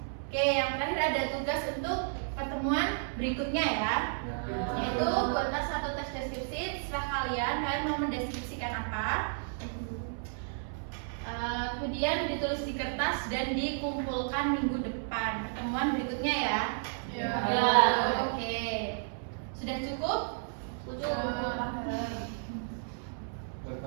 Oke, yang terakhir ada tugas untuk pertemuan berikutnya ya. Yaitu buatlah satu tes deskripsi. Setelah kalian mau mendeskripsikan apa? Kemudian ditulis di kertas dan dikumpulkan minggu depan. Pertemuan berikutnya ya. Ya. Oke. Sudah cukup?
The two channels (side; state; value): left; silent; 56 dB below the other